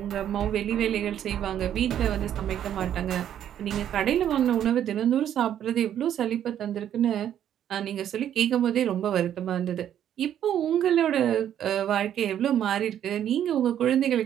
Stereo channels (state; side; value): quieter; left; 10.3 dB